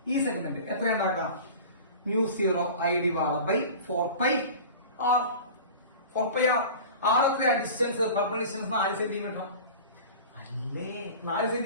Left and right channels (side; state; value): both; inverted; correlation -0.37